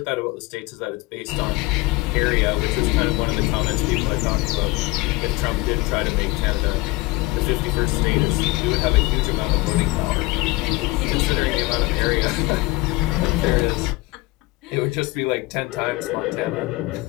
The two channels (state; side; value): quieter; right; 21.7 dB